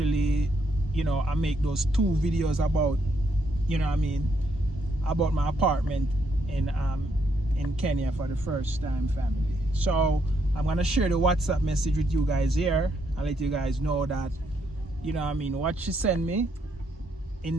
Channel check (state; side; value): normal; both; correlation 0.75